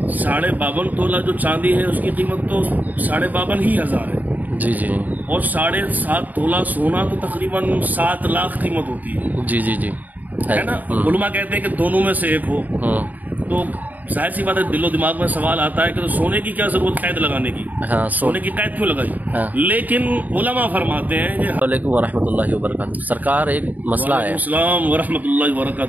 52.5 तोला जो चांदी है उसकी कीमत तो 52,500 है। जी जी। और 7.5 तोला सोना तो तकरीबन 7 लाख कीमत होती है। जी जी जी, है ना। उलमा कहते हैं कि दोनों में से एक हो, तो जाहिर सी बात है दिलो दिमाग में सवाल आता है कि तो सोने की क्या जरूरत कैद लगाने की। हाँ, सोने की कैद क्यों लगाई। हाँ। लेकिन उलमा फरमाते हैं कि वालेकुम वरहमतुल्लाहि वबरकातुहू। सरकार एक मसला है। अस्सलाम वरहमतुल्लाहि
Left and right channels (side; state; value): left; late; 0.081 ms